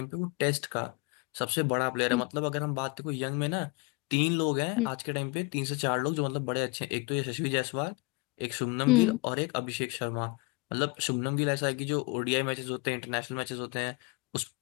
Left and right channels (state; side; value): quieter; right; 27.9 dB